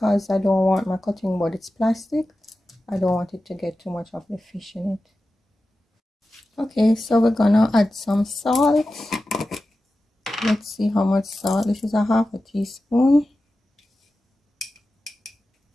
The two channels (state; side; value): normal; both; correlation 0.93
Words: I don't want my cutting board, it's plastic. I don't want it to get too much of the fish in it. Okay, so we're gonna add some salt. Let's see how much salt. This is a half a teaspoon.